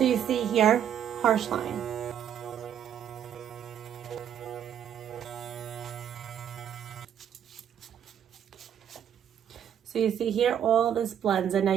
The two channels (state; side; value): quieter; left; 9.4 dB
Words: you see here, harsh line. So you see here, all this blends, and now